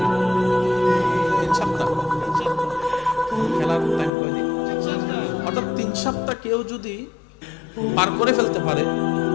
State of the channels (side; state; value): right; drops out; at 4.1 s